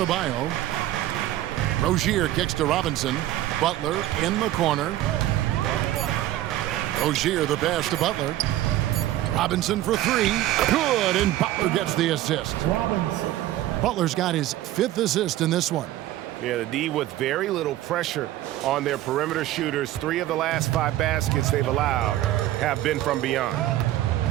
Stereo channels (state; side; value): quieter; left; 14.4 dB